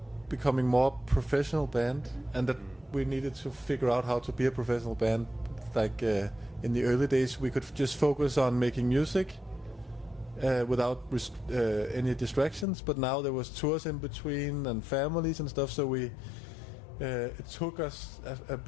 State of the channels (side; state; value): right; drops out; at 12.7 s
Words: becoming more professional band, and that we needed to figure out how to be a professional band. Like in the early days, we could just focus on making music without any distractions. But now there was tours in between and families and stuff, so it took us a